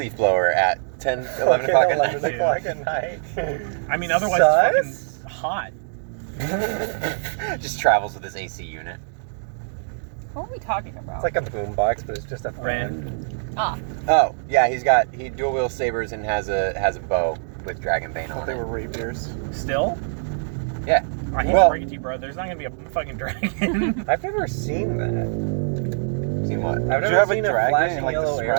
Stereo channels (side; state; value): left; silent; digital silence